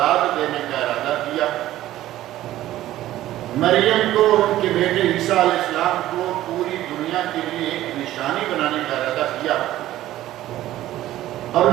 دینے کا ارادہ کیا، مریم کو اور ان کے بیٹے عیسیٰ علیہ السلام کو پوری دنیا کے لیے ایک نشانی بنانے کا ارادہ کیا، اور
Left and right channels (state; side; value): quieter; left; 14.3 dB